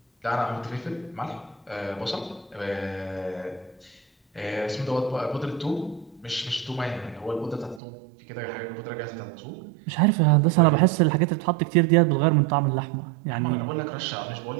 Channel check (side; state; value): left; drops out; at 7.8 s